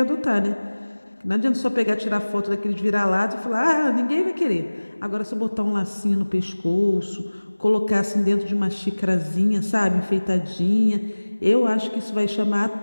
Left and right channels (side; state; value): both; inverted; correlation -1.00